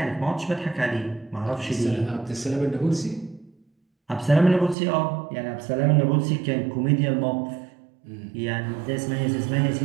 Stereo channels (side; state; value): left; drops out; at 4.8 s